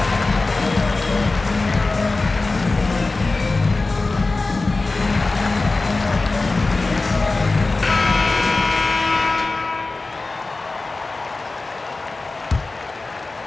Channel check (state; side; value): quieter; right; 3.5 dB